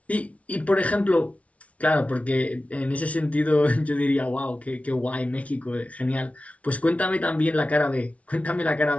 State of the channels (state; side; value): late; right; 0.065 ms